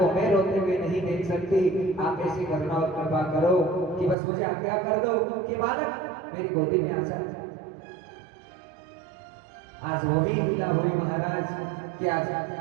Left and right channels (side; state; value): left; drops out; at 4.2 s